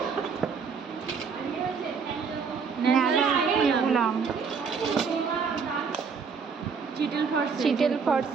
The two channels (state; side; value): quieter; left; 5.7 dB